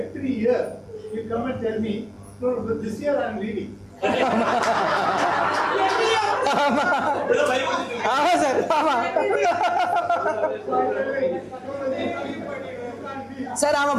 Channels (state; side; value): identical; both; correlation 1.00